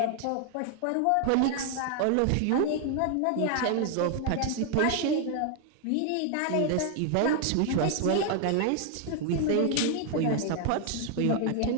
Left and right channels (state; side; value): different; both; correlation 0.00